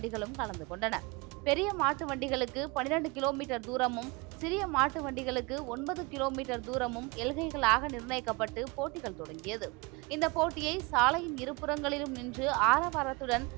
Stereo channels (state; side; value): quieter; left; 27.0 dB